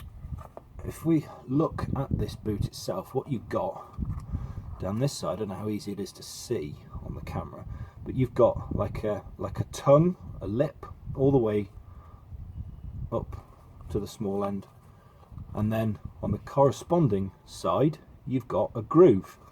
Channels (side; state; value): both; identical; correlation 1.00